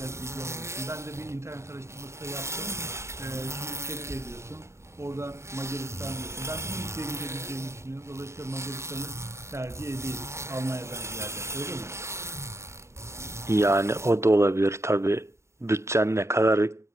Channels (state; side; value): late; left; 0.13 ms